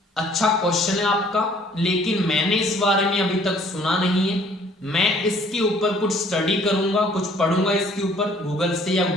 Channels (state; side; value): normal; both; correlation 0.58